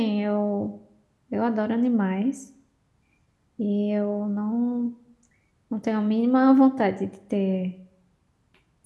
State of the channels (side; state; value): both; identical; correlation 1.00